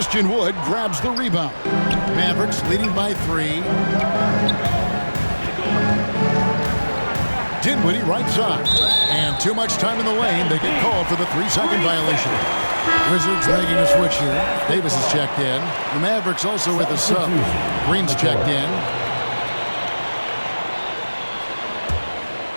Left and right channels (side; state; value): both; inverted; correlation -1.00